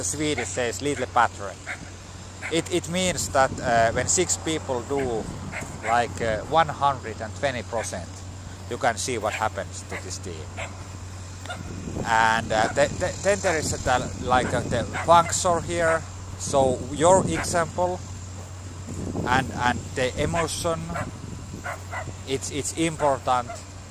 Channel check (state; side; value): identical; both; correlation 1.00